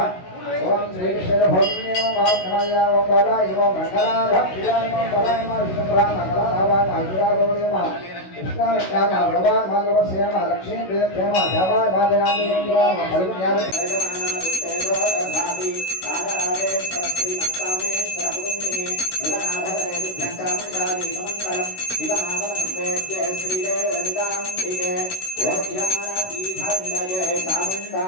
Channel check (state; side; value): late; right; 16 ms